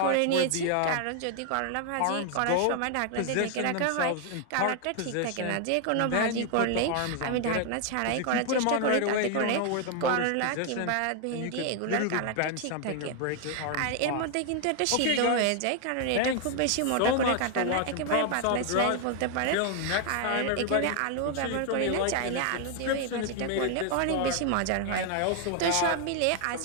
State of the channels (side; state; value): both; different; correlation 0.00